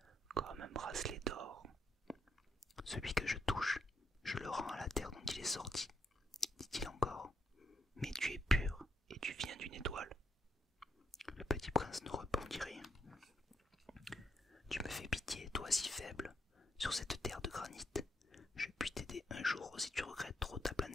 comme un bracelet d'or. Celui que je touche, je le rends à la terre dont il est sorti, dit-il encore. Mais tu es pur et tu viens d'une étoile. Le petit prince ne répondit rien. Tu me fais pitié, toi si faible, sur cette terre de granit. Je puis t'aider un jour si tu regrettes trop ta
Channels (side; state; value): both; normal; correlation 0.78